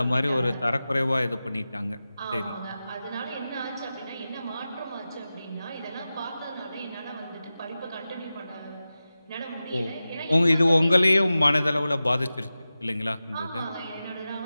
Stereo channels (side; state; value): both; inverted; correlation -0.94